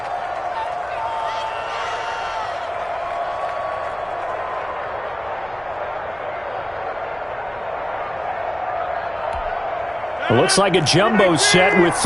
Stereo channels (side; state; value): left; noise; hum, 27 dB below the sound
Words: It looks like a jumbo set with